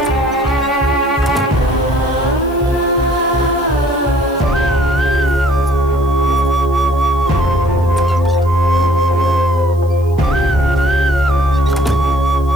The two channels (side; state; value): left; noise; hiss, 28 dB below the sound